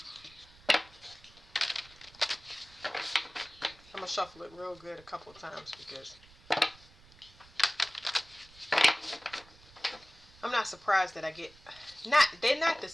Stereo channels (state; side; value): noise; right; rumble, 24 dB below the sound